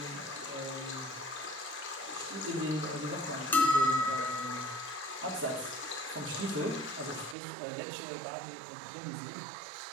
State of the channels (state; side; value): drops out; left; at 7.4 s